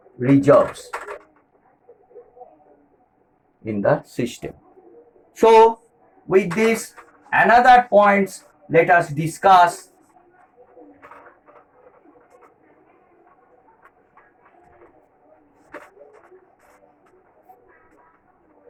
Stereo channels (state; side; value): identical; both; correlation 1.00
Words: reserves in the system. So with this, another points, let us discuss.